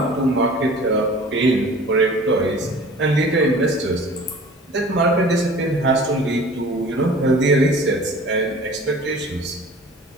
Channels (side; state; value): both; normal; correlation 0.45